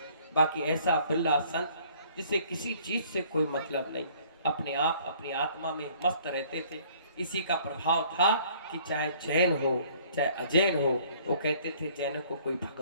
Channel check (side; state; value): both; inverted; correlation -0.57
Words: बाकी ऐसा बिरला संत जिसे किसी चीज से कोई मतलब नहीं, अपने आप अपनी आत्मा में मस्त रहते थे। इसी का प्रभाव था कि चाहे जैन हो चाहे अजैन हो, वो कहते थे जैन को कोई